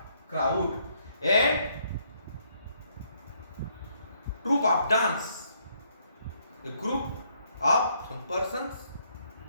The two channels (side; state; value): both; inverted; correlation -0.70